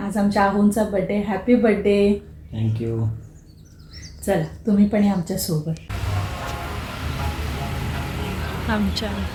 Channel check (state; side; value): identical; both; correlation 1.00